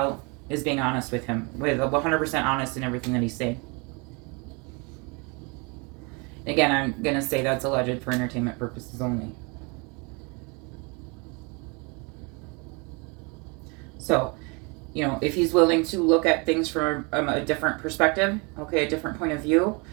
is being honest with him, with 100% honest in everything that he's saying. Again, I'm going to say that's alleged for entertainment purposes only. So, you know, if he's willing to look at things from a different perspective, okay, a different point of view,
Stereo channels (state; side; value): quieter; left; 30.7 dB